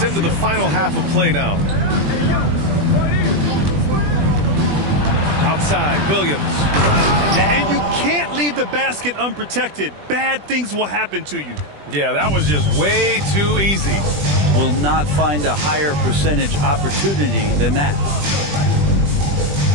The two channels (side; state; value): left; late; 20 ms